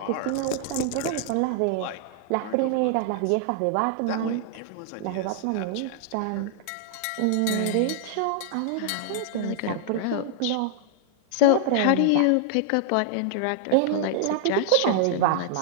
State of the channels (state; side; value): different; both; correlation 0.00